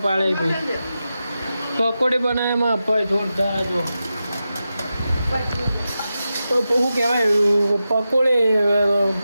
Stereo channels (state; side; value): inverted; both; correlation -0.91